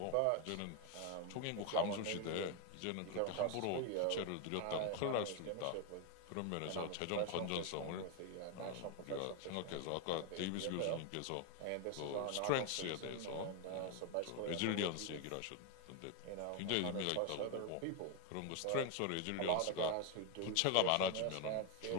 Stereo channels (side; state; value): both; different; correlation 0.01